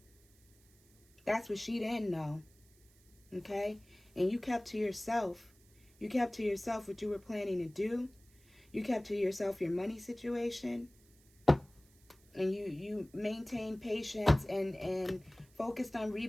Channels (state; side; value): noise; right; hiss, 30 dB below the sound